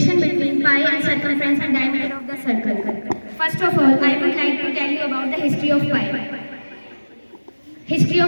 between pi and circumference and diameter of the circle. First of all, I would like to tell you about the history of pi. History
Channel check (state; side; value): inverted; both; correlation -1.00